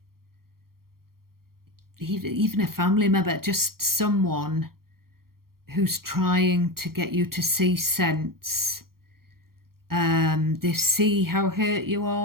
even a family member, just someone who's trying to get you to see sense. They see how hurt you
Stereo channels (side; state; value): left; late; 0.93 ms